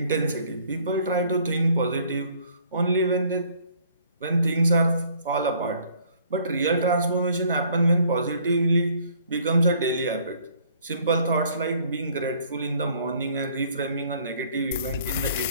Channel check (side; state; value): both; inverted; correlation -0.59